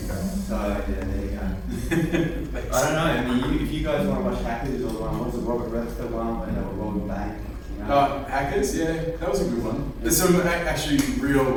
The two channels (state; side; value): identical; both; correlation 1.00